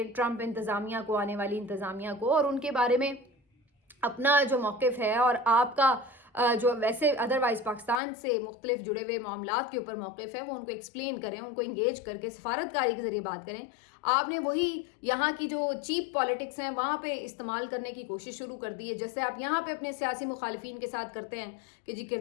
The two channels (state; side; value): drops out; right; at 8.0 s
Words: ट्रंप इंतज़ामिया को, आने वाली इंतज़ामिया को, और उनके बारे में अपना जो मौक़िफ़ है और आपका जो वैसे अदरवाइज़ पाकिस्तान से मुख्तलिफ जुड़े हुए मामलात के ऊपर मौक़िफ़ है वो उनको एक्सप्लेन करें, उनको इंगेज करके सफारतकारी के ज़रिए बात करें। आपने वही यहाँ की जो चीप पॉलिटिक्स हैं वहाँ पे इस्तेमाल करने की कोशिश शुरू कर दी है। जैसे आप यहाँ पे अपने सियासी मुखालिफिन के साथ करते हैं कि जी